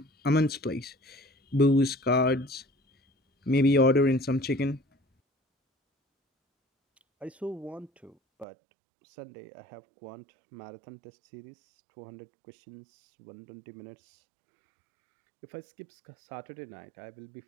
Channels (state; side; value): drops out; left; at 8.5 s